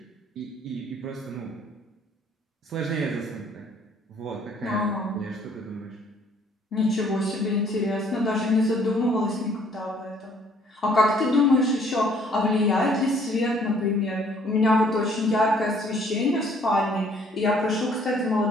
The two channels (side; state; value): both; normal; correlation 0.61